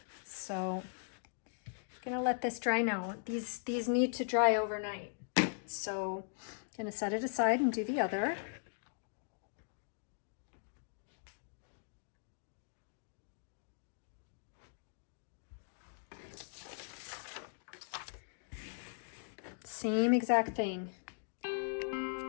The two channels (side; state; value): right; silent; digital silence